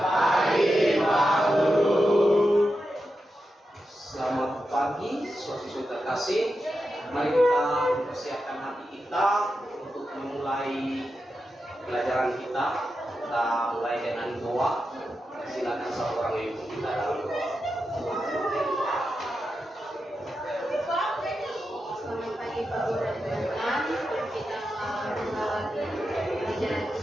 Pak Guru. Selamat pagi siswa-siswi terkasih. Mari kita mempersiapkan hati kita untuk memulai pelajaran kita. Kita mulai dengan doa. Silakan satu orang yang ikut kita dalam doa. Selamat pagi Pak Guru dan teman-teman. Kita mengawali pelajaran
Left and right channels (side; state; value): both; normal; correlation 0.89